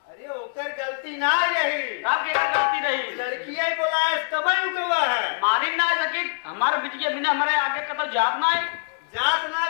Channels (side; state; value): right; silent; digital silence